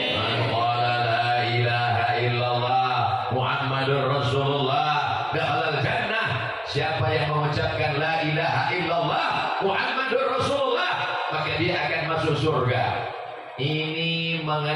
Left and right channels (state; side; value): identical; both; correlation 1.00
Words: Man qala la ilaha illallah Muhammadur Rasulullah dakhala jannah. Siapa yang mengucapkan la ilaha illallah Muhammadur Rasulullah, maka dia akan masuk surga. Ini